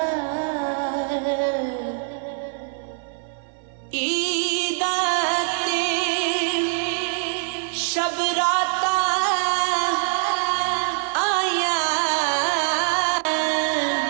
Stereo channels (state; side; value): silent; left; 55 dB below the other